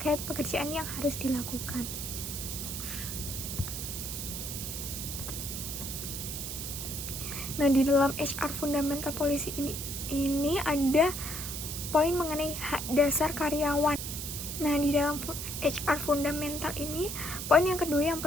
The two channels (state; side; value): noise; right; hiss, 5 dB below the sound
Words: pekerjaan yang harus dilakukan. Nah, di dalam HR fundamental policy ini ada poin mengenai hak dasar karyawan. Nah, di dalam HR fundamental ini, poin yang kedua yang